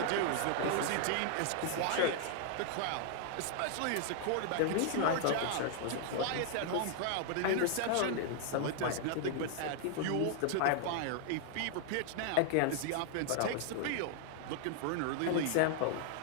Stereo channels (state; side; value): different; both; correlation 0.00